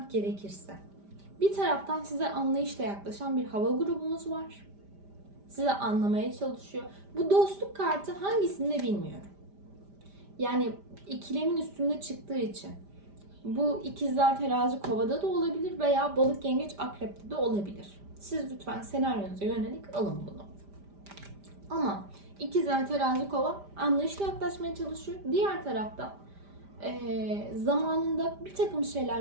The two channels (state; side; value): late; left; 5.0 ms